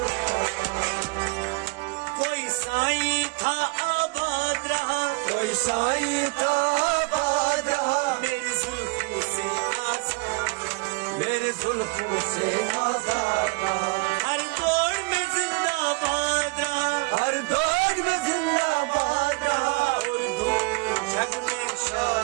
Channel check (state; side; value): quieter; left; 28.8 dB